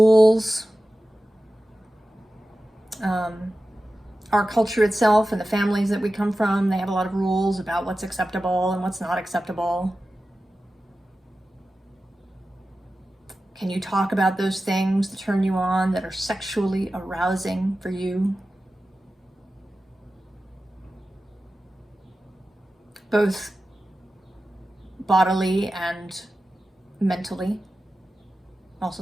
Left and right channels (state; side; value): normal; both; correlation 0.94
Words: Our culture itself and the families that we come from, they have a lot of rules about what's acceptable and what's not acceptable. Can you talk about those things that turn you on, that are sexually arousing for you? Both bodily and mentally, also